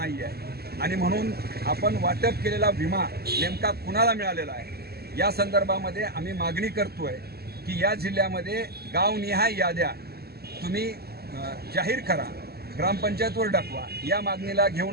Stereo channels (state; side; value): late; left; 0.46 ms